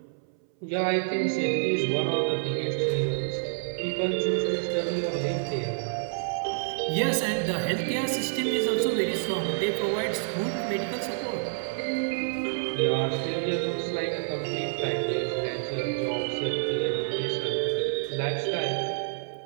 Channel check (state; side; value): silent; left; 59 dB below the other